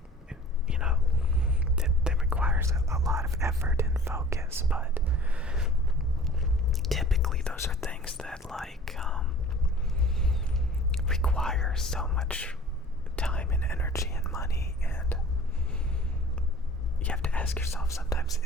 you know, that requires a lot of effort and focus. But typically those are things that like require so much time and energy and money, and you have to ask yourself sometimes,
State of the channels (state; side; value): normal; both; correlation 0.46